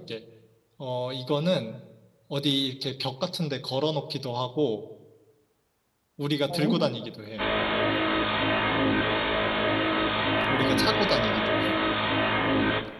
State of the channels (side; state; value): both; identical; correlation 1.00